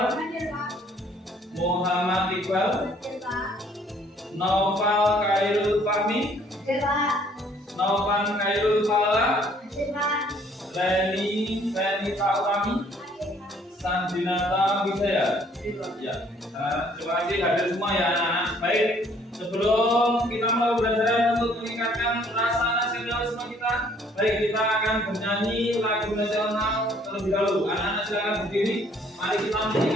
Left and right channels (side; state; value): both; normal; correlation 0.61